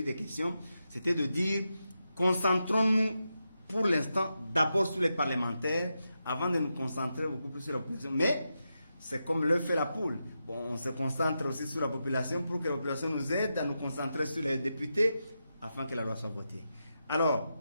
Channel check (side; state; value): both; inverted; correlation -0.88